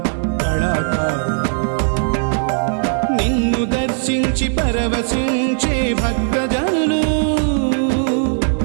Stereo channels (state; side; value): silent; left; digital silence